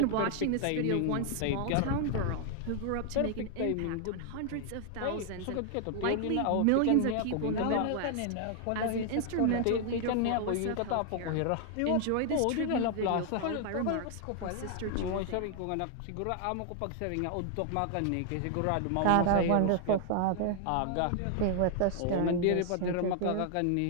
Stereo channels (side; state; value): both; different; correlation 0.00